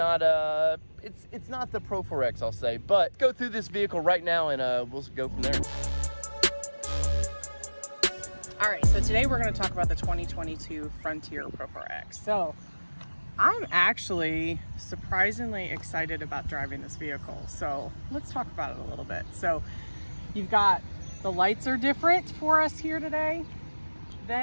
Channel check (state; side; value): inverted; both; correlation -1.00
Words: it's not the Pro4x, I'll say. But go through this vehicle right now, and we'll go from there. All right, so today we're going to talk about the 2022 Frontier Pro4x. So I'm actually surprisingly excited about driving this vehicle. So let's talk about it a little bit. So you've got the lights are different for us here today